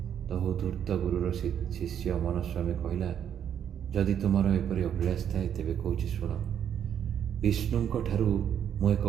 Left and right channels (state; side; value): quieter; left; 9.1 dB